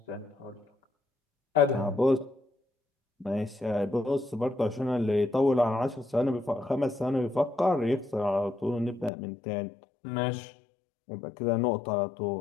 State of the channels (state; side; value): drops out; right; at 9.1 s